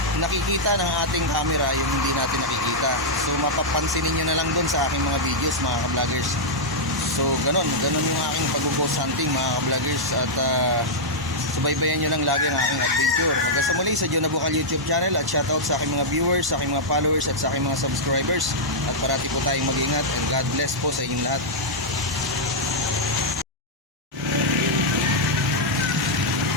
nakikita ng ating camera yung hindi natin nakikita. So mapapansinin nyo na lang doon sa aking mga videos mga ka-vloggers. So ganun yung aking pag-ghost hunting mga ka-vloggers. At subaybayan nyo lang lagi ang aking adventure. Hanggang sa muli sa Juna Bukal YouTube channel. At shoutout sa aking mga viewers, sa aking mga followers, at sa aking mga subscribers. At parati po tayong mag-ingat, and God bless po sa inyong lahat.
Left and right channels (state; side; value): normal; both; correlation -0.07